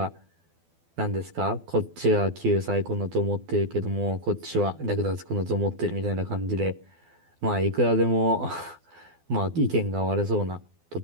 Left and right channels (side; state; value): left; late; 12 ms